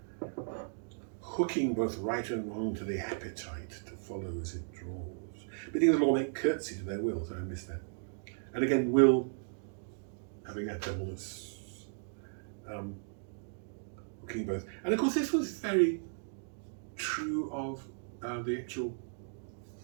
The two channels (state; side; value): silent; left; digital silence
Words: Hooking both right and wrong to the appetite to follow as it draws. Bidding the law make curtsy to their will. So I missed that. And again, will having that doublness. Hooking both. And of course, this was very true of the actual